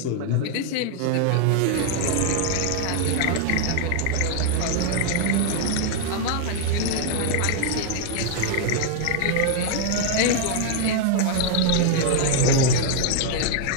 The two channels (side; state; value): both; different; correlation 0.00